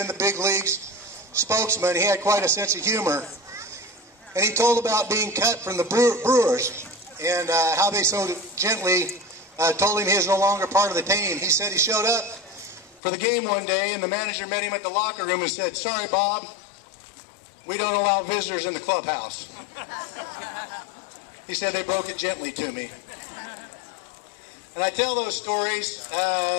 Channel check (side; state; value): right; drops out; at 13.0 s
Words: the big leagues, spokesman. He had quite a sense of humor. And he told about being cut from the Brewers and how they so gently told him he was no longer part of the team. He said he showed up for the game one day and the manager met him at the locker room and said, "Sorry, Bob, we don't allow visitors in the clubhouse." He said they broke it gently to me. And I tell those stories